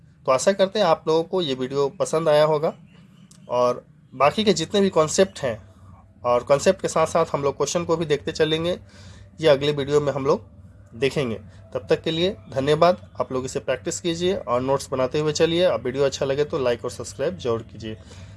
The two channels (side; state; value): both; identical; correlation 1.00